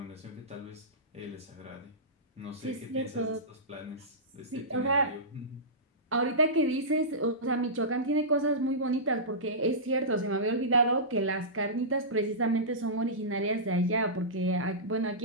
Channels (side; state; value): both; normal; correlation -0.18